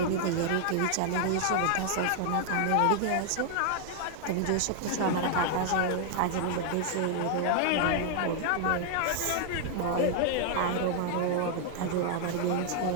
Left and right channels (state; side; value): different; both; correlation 0.00